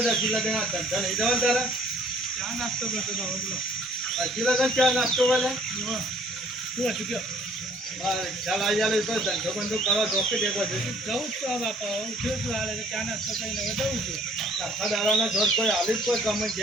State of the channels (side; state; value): both; normal; correlation 0.58